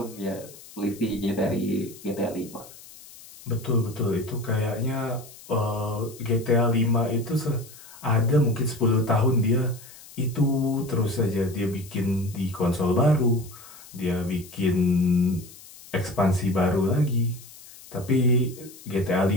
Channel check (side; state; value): left; noise; hiss, 19 dB below the sound